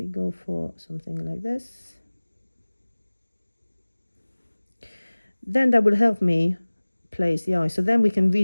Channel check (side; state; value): both; inverted; correlation -1.00